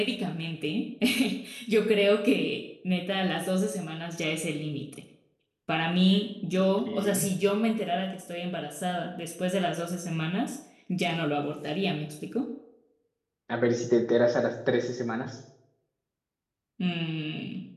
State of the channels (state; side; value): identical; both; correlation 1.00